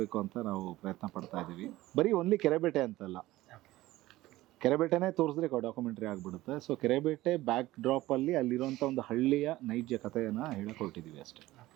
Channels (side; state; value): left; quieter; 17.2 dB